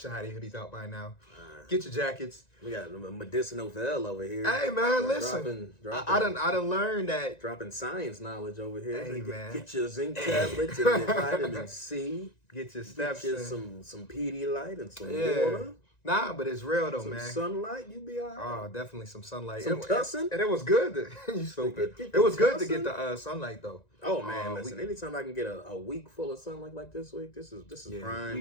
have their hoodies out by now. Get your jackets. We got medicinal Vel over here. Hey man, listen. I done learned that. Dropping science knowledge over here. Hey man, get your zinc tablets and your vitamin C. Get your steps. Get you some Pedialyte and some water. Nah, but it's real though, some man. Sunlight, you be all right. Oh, definitely some sunlight. Some tussin'? And it was good. You stupid. It was good to get the sunlight though. Oh man, listen. Anytime I can get a week full of sunlight like this week, this is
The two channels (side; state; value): right; late; 1.9 ms